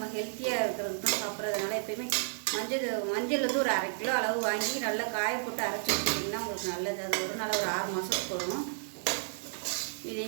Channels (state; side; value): silent; left; digital silence